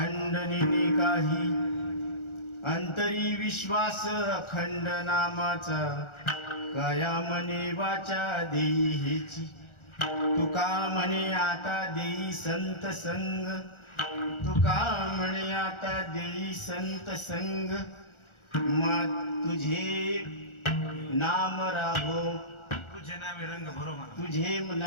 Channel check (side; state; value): right; late; 1.4 ms